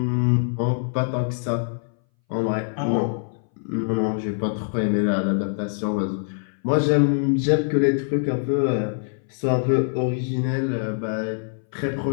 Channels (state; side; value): silent; right; 61 dB below the other